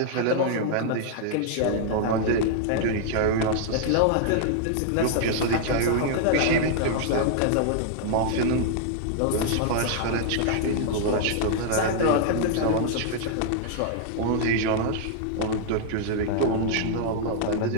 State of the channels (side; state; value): both; different; correlation -0.01